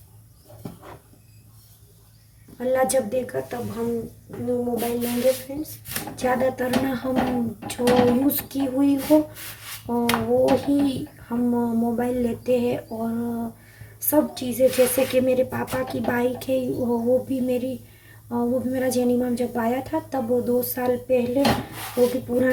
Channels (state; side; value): identical; both; correlation 1.00